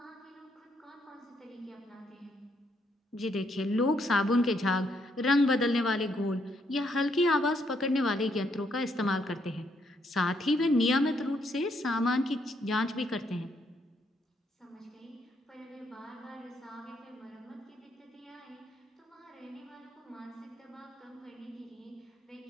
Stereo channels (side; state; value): both; normal; correlation 0.74